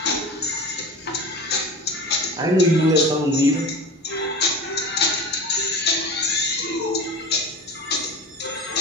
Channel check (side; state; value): both; normal; correlation 0.33